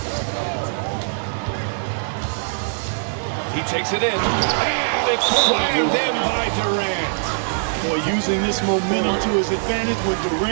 He takes it in. And it's slammed in by Durant. Boy, using this momentum to his advantage when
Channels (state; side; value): silent; left; digital silence